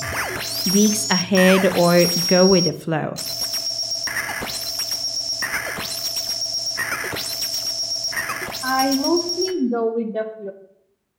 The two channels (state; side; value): identical; both; correlation 1.00